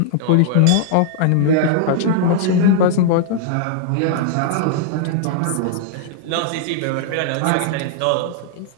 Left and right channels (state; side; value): different; both; correlation -0.01